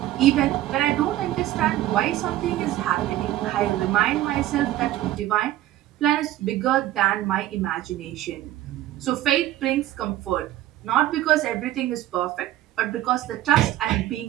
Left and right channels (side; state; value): left; quieter; 14.3 dB